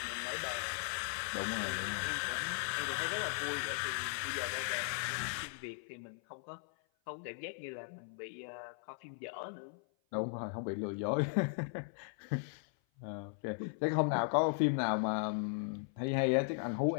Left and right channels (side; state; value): right; silent; 53 dB below the other